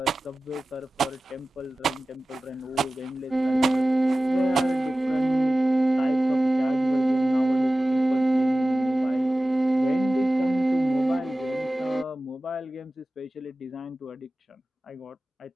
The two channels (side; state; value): both; normal; correlation 0.96